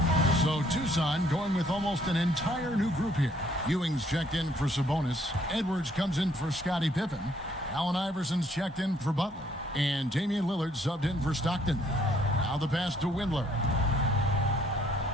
So Tucson going with almost an entire new group here. Ewing's checked in for Sabonis. Edwards comes in for Scottie Pippen. Allen Iverson's checked in for Butler. And Damian Lillard subbed in for Stockton. Now the pass to Windler.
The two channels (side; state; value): both; normal; correlation 0.66